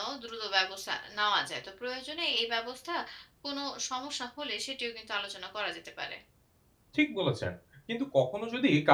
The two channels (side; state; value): both; identical; correlation 1.00